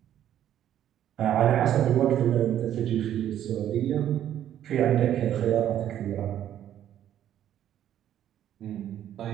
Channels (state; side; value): quieter; left; 11.0 dB